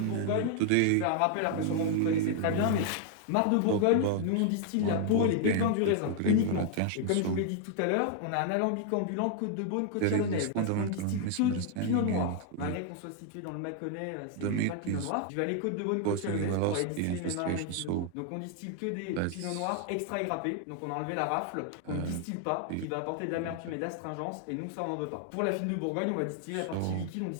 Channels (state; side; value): different; both; correlation 0.00